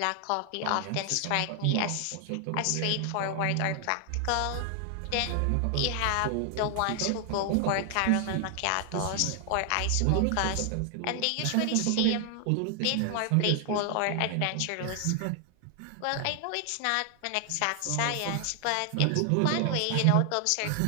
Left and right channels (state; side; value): different; both; correlation 0.00